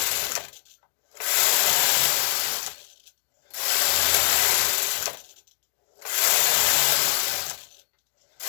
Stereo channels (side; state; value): right; silent; 63 dB below the other